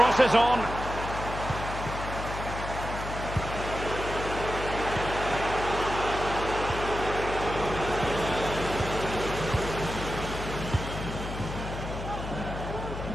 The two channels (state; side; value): noise; left; hum, 7 dB below the sound